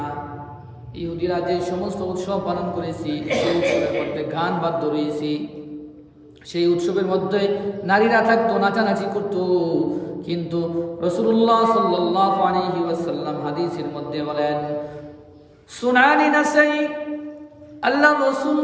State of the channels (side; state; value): both; identical; correlation 1.00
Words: ইহুদিরা যে সমস্ত উৎসব পালন করেছি, সেই উৎসবের মধ্যে গান বাদ্য রয়েছে, সেই উৎসবের মধ্যে নারীরা থাকতো, নাচানাচি করত। কিন্তু রাসূলুল্লাহ সাল্লাল্লাহু আলাইহি ওয়াসাল্লাম হাদিসের মধ্যে বলেন, সুনানি নাসাই, আল্লাহ রাসূল